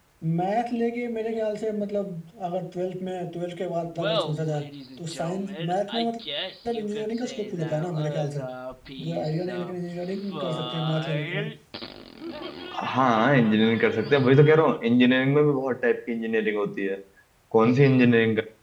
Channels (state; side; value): identical; both; correlation 1.00